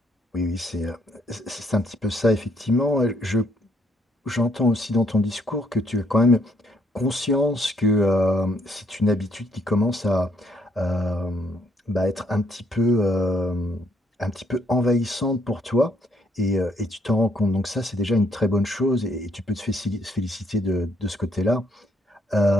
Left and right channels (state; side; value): normal; both; correlation 0.71